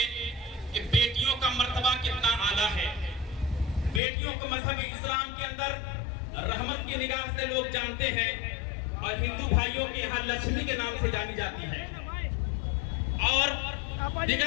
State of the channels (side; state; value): right; drops out; at 4.0 s